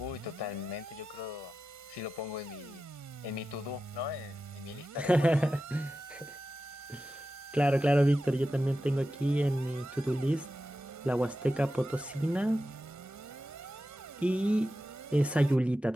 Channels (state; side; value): normal; both; correlation 0.92